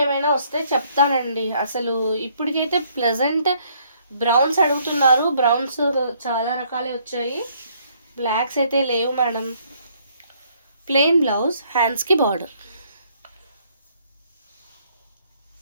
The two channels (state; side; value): inverted; both; correlation -0.66